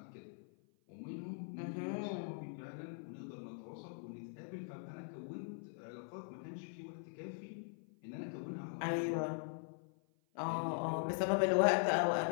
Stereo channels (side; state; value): right; silent; 50 dB below the other